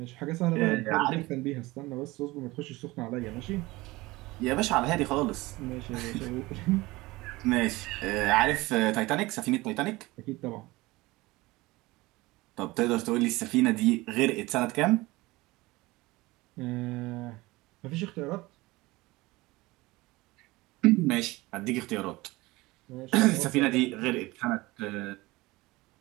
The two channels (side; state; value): left; quieter; 20.9 dB